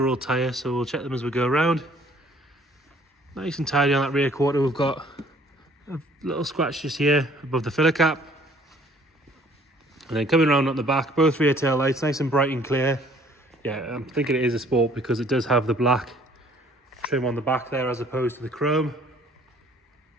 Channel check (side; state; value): both; normal; correlation 0.58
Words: tyre, so we'll check them as we go around. Nice and tidy on that rear quarter. We've got a little scratch just here above the filler cap. And then coming around on the back, both rear tail lights, nice and bright and clear. Yeah, I'm thinking it is a Sport because it does have the black trim on the back there as opposed to the chrome.